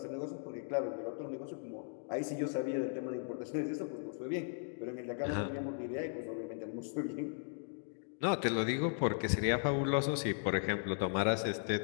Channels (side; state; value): right; silent; digital silence